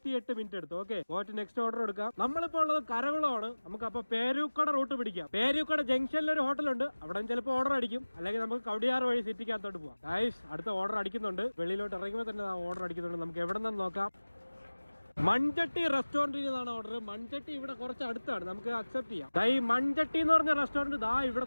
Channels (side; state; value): both; inverted; correlation -1.00